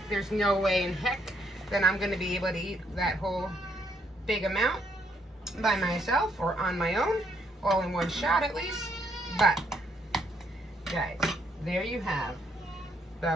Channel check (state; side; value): normal; both; correlation 0.72